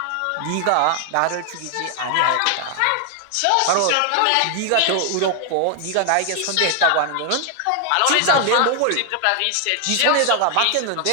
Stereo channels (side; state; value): both; different; correlation 0.00